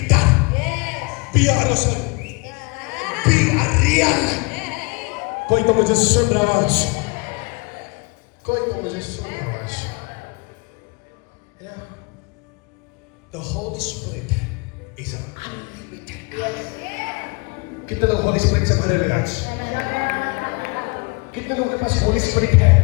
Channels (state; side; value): quieter; right; 29.7 dB